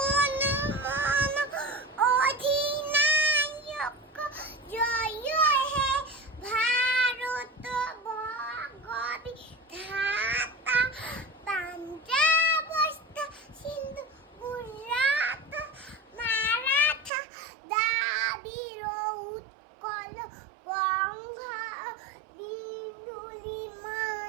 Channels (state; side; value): drops out; left; at 17.1 s